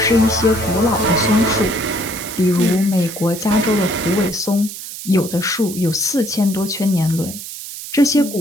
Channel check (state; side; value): noise; right; hiss, 11 dB below the sound